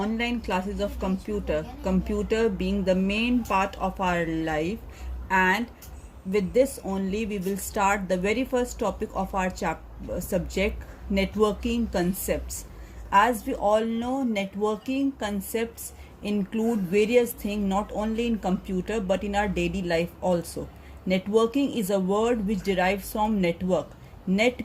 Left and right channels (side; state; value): both; identical; correlation 1.00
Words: classes of computer being the main part of our life, and with this only we will start the very first topic of our subject, networking concepts. As we all know, networking concepts include various things not only in computer but in our daily life also. Networking is a word which derives from network. Net